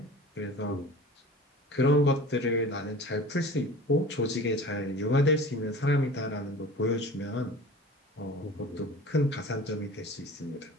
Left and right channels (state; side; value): normal; both; correlation 0.39